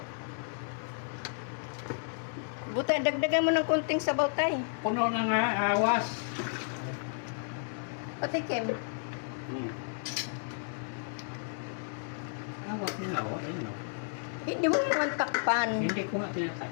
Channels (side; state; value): right; silent; 56 dB below the other